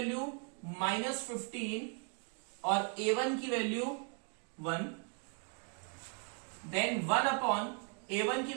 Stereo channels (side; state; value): left; quieter; 38.8 dB